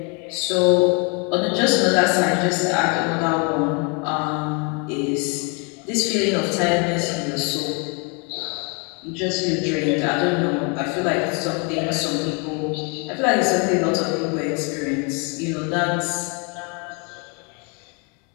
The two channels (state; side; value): quieter; right; 34.0 dB